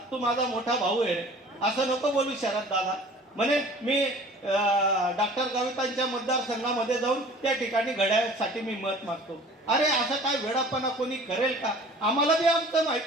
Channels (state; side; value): normal; both; correlation 0.46